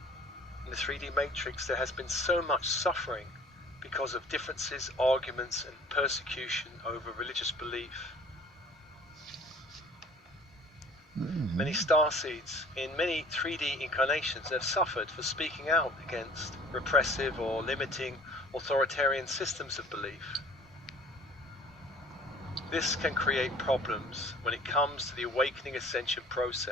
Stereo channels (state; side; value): normal; both; correlation 0.49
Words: In the 3D matrix there has been so much suffering because of differences, arguments and persecution over religious belief. Many starseeds in many 3D incarnations have suffered for speaking out against repressive or limiting authoritarian systems of belief. This can create problems when it comes to the awakening ascension